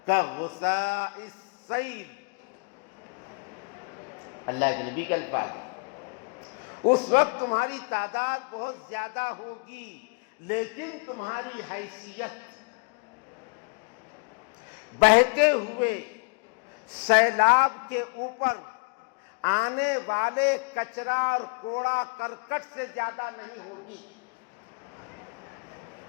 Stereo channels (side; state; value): right; quieter; 34.3 dB